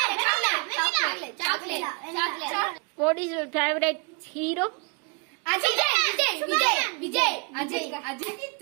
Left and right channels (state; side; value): quieter; left; 33.0 dB